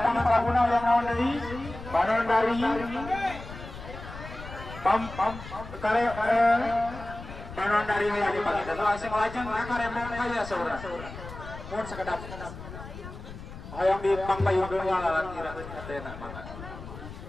laguna yang naon deui? Panandari. Kare Panandari aya di pangita. Langsung lajeng ka Rembang kaya saudara. Mun sakedap. Hayang di pangpayungkeun walalan kira teh mangga.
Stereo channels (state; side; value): noise; left; rumble, 12 dB below the sound